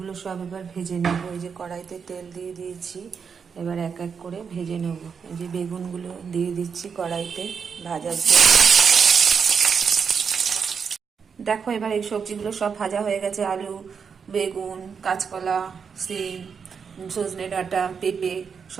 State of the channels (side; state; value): left; quieter; 6.3 dB